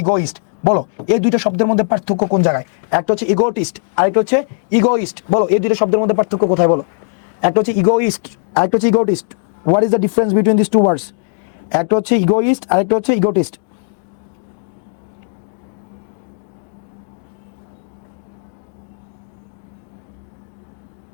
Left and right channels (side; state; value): right; silent; digital silence